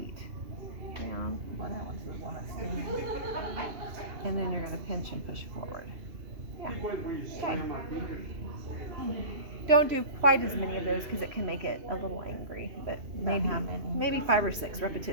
Down, well, that one's the one that's stinging. and then you're going to pinch and push forward. Yeah. Don't do quite as many of those because it can make it a little angry, but maybe how many? maybe 5 or 6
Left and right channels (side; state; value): left; late; 2.8 ms